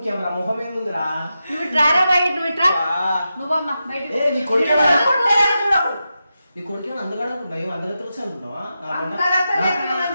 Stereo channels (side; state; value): both; inverted; correlation -0.89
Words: రా, మొహం ఏముందిరా? నువ్వు ట్రారా బయట నువ్వు ఇట్రా నువ్వమ్మా బయట నీ కొడుకు అందగాడు అనుకుంటా, ఏమో అందరితో వచ్చి అనుకుంటావా?